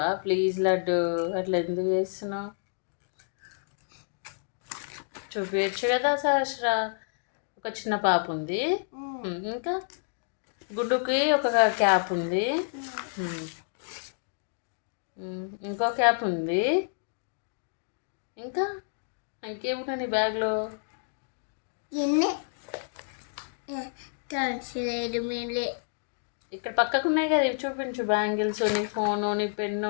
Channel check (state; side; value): silent; right; digital silence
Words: ప్లీజ్ లడ్డు, అట్లా ఎందుకు చేస్తున్నావు? చూపించచ్చు కదా సహస్ర. ఒక చిన్న పాప ఉంది, ఇంకా గుడ్డుకి ఒక క్యాప్ ఉంది, ఇంకో క్యాప్ ఉంది, ఇంకా ఇంకేమున్నా నీ బ్యాగ్లో? ఇక్కడ పక్కకు ఉన్నాయి కదా, ఇవి చూపించు. బ్యాంగిల్స్, నీ ఫోను, నీ పెన్ను,